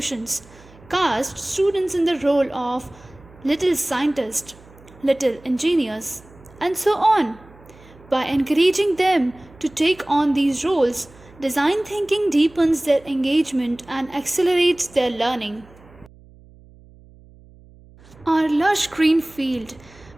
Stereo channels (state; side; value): noise; right; hum, 24 dB below the sound